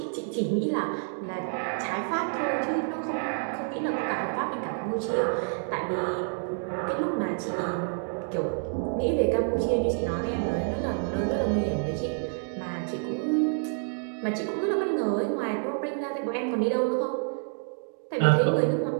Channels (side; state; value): left; silent; 59 dB below the other